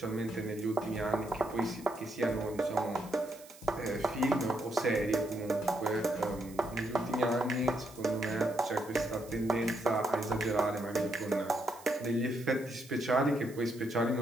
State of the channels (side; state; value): right; noise; hiss, 21 dB below the sound